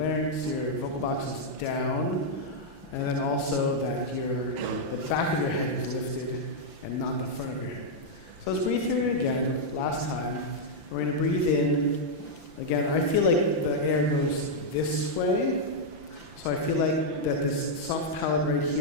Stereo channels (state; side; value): late; left; 5.9 ms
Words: larynx, your vocal box is down, and then also that the back of your head is lifted and not the front of your head. So let's breathe through it again, last time. We're going to breathe in. Again, I feel like the air goes this way. So I feel like that this soft palate right